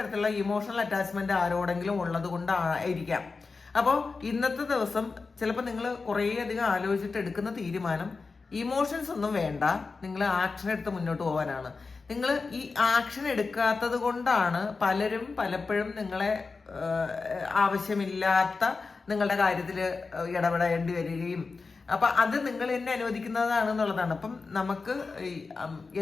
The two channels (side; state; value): right; quieter; 4.3 dB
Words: ഇമോഷണൽ അറ്റാച്ച്മെന്റ് ആരോടെങ്കിലും ഉള്ളത് കൊണ്ടായിരിക്കാം. അപ്പോൾ ഇന്നത്തെ ദിവസം ചിലപ്പോൾ നിങ്ങൾ കുറേ അധികം ആലോചിച്ചിട്ട് എടുക്കുന്ന തീരുമാനം ഇമോഷൻസ് ഒന്നും വേണ്ട, നിങ്ങൾ ആക്ഷൻ എടുത്ത് മുന്നോട്ട് പോകാനാണ്. നിങ്ങൾ ഈ ആക്ഷൻ എടുക്കാത്തത് കൊണ്ടാണ് പലപ്പോഴും നിങ്ങളെ ആവശ്യമില്ലാത്ത നിങ്ങളുടെ കാര്യത്തിൽ ഇടപെടേണ്ടി വരികയും, അപ്പം അത് നിങ്ങൾ തന്നെ അനുവദിക്കുന്നതാണെന്നുള്ളതാണ്. അപ്പം നമുക്ക്